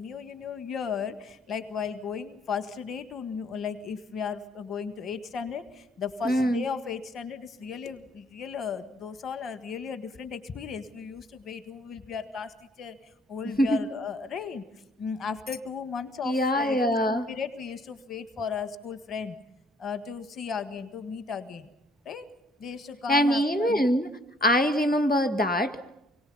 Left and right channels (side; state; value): both; normal; correlation 0.62